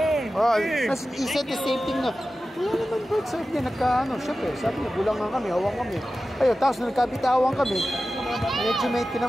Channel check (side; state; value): both; normal; correlation 0.94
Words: Tapos he said the same thing na, wala naman bro, sabi niya, syempre, sabi niya, bulangan kami, hawang kami. Ayun, tapos nagkabitawan kami, medyo may